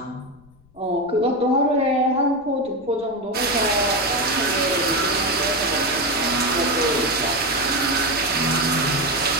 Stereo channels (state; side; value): noise; left; rumble, 29 dB below the sound